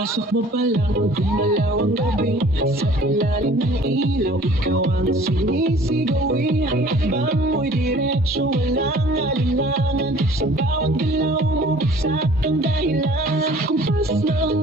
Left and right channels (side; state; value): both; normal; correlation 0.51